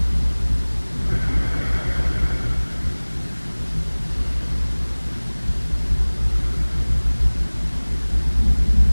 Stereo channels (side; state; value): both; inverted; correlation -1.00